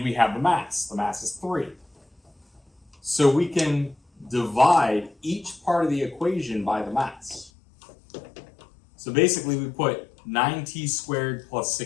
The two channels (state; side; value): drops out; right; at 7.5 s